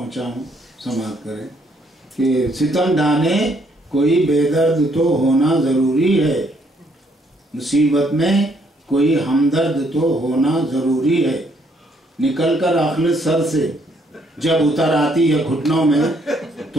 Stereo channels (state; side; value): normal; both; correlation 0.69